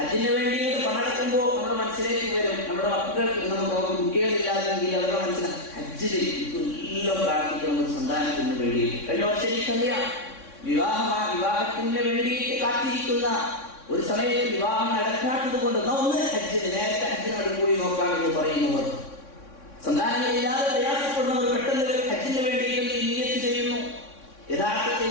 വേണ്ടിയിട്ട് പണടക്കുമ്പോൾ നമ്മുടെ മനസ്സിലേക്ക് വരും, നമ്മുടെ മക്കൾക്ക് നമുക്ക് കുട്ടികളില്ലാതെങ്കിൽ അവരുടെ മനസ്സിലാകും ഹജ്ജിൽ എല്ലാം പ്രാർത്ഥിക്കണം ഒരു സന്താനത്തിന് വേണ്ടിയിട്ട്. കഴിഞ്ഞ വർഷം എനിക്കറിയാം, വിവാഹത്തിന് വേണ്ടിയിട്ട് കാത്തിരിക്കുന്ന ഒരു സമയത്ത് വിവാഹം നടക്കാത്തത് കൊണ്ട് ഒന്ന് ഹജ്ജിന് നേരത്തെ ഹജ്ജിനോട് പോയി നോക്കാമെന്ന് പറയുന്നവർ, സന്താനങ്ങളില്ലാതെ പ്രയാസപ്പെടുന്നവർ പെട്ടെന്ന് ഹജ്ജിന് വേണ്ടിയിട്ട് നിയ്യത്ത് ചെയ്യുന്നു. യഥാർത്ഥത്തിൽ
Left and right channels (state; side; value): late; right; 3.6 ms